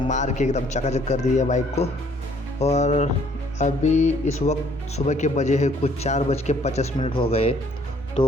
मार के एकदम चकाचक कर दी है बाइक को। और अभी इस वक्त सुबह के बजे है कुछ 4:50 हो गए। तो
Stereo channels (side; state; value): both; normal; correlation 0.62